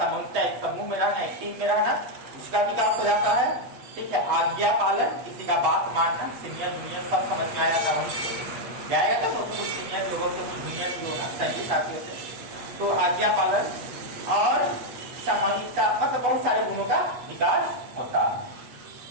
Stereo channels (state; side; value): late; left; 8.2 ms